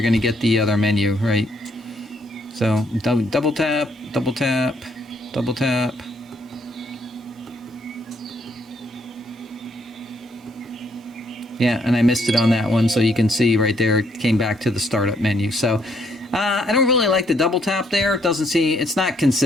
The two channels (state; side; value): normal; both; correlation 0.70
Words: going to get the other menu, right? So double tap, double tap, double tap. Yeah, and I missed it on that one, so you can see right there it came back to the startup menu. So I don't really like the double tap there. It doesn't seem, it's not